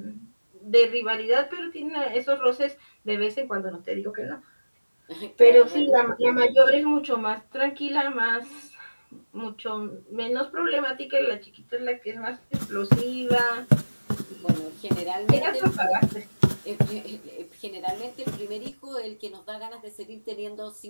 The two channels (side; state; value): both; inverted; correlation -1.00